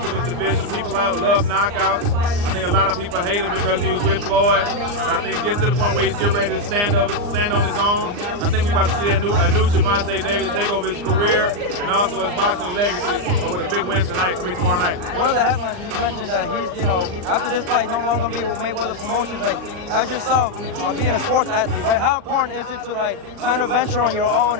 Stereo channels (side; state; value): left; late; 39 ms